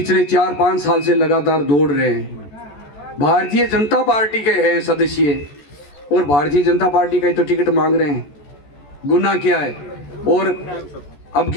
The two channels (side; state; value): right; late; 14 ms